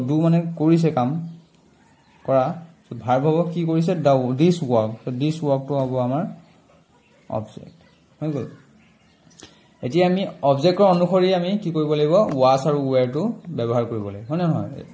ডু মানে কৰিছে কাম কৰা তো ভাৰ্ব হ'ব কি কৰিছে দিস ওয়াৰ্ক তো দিস ওয়াৰ্কটো হ'ব আমাৰ অবজেক্ট হৈ গল এতিয়া আমি অবজেক্টৰ অনুসৰি আমি কি কৰিব লাগিব ওয়াজ আৰু ওৱেৰটো ব্যৱহাৰ কৰিব লাগিব হয় নহয়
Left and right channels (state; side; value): identical; both; correlation 1.00